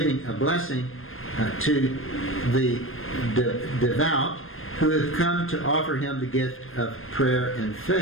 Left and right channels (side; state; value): right; late; 0.60 ms